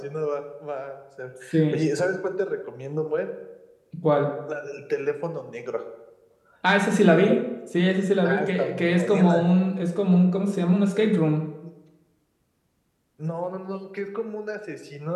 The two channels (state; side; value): identical; both; correlation 1.00